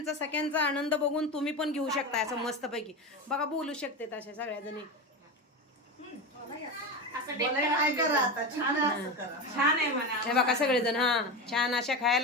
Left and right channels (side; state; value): both; normal; correlation 0.21